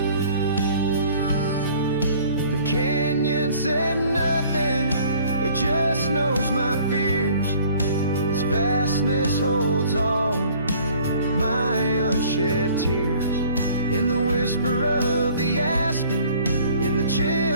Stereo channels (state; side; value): inverted; both; correlation -0.54